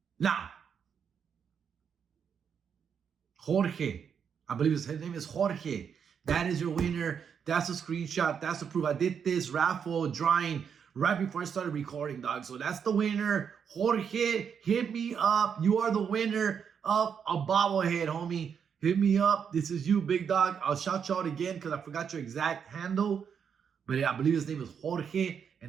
Now, Jorge. I believe his name is Jorge. That is your winner. That's a screenshot. That's the proof. I did this raffle drawing right before I started recording, dog. So that's the winner. Jorge, hit me up. You are the winner of a bobblehead, homie. Hit me up. This is you, big dog. I'll shout you out again because I forgot your exact handle. But yeah, I believe his name is Jorge.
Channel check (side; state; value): left; quieter; 7.2 dB